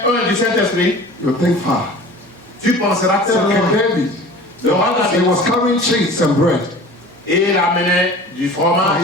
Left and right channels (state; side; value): normal; both; correlation 0.41